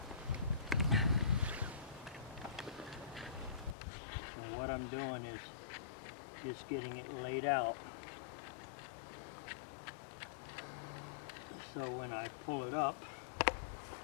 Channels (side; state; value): right; drops out; at 3.8 s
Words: So what I'm doing is just getting it laid out. So when I pull it up,